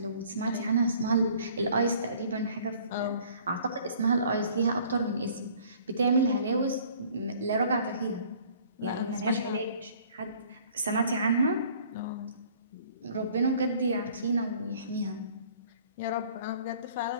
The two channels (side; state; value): both; inverted; correlation -0.54